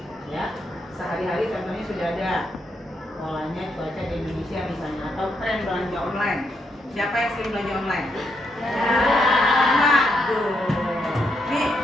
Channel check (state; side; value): normal; both; correlation 0.79